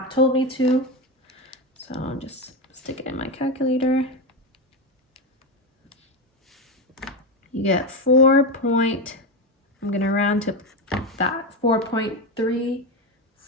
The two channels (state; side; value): normal; both; correlation 0.14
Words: told me to. So I'll just stick it in my calculator. You get I'm going to round to that,